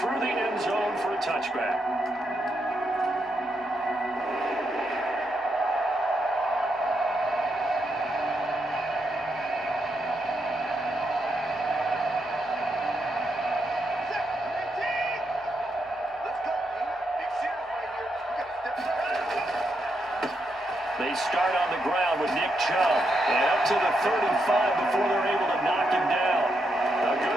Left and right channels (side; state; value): both; normal; correlation 0.81